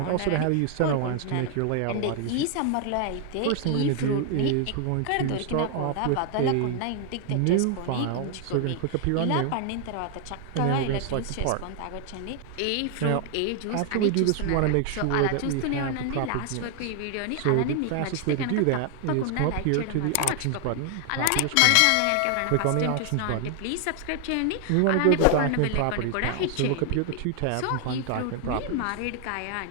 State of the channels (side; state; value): both; different; correlation 0.00